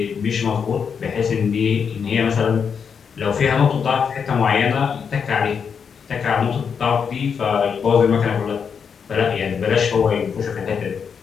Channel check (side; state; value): right; quieter; 6.6 dB